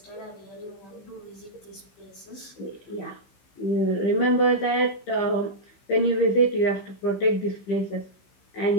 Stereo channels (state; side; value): late; right; 15 ms